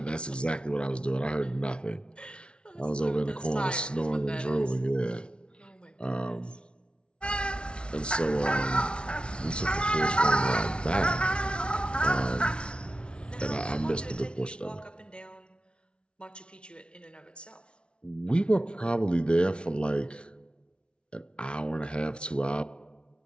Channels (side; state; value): right; late; 0.058 ms